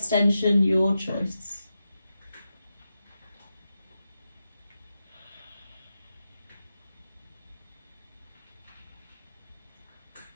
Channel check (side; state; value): both; inverted; correlation -0.90